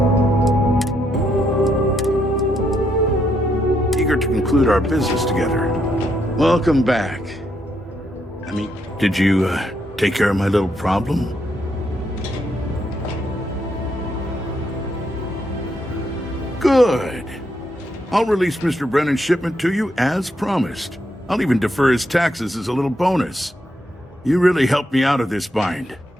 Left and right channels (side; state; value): both; normal; correlation 0.77